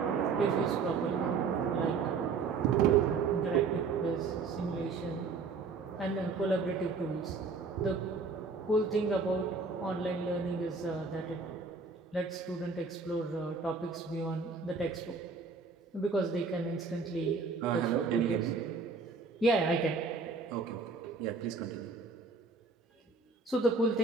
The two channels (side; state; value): left; quieter; 4.6 dB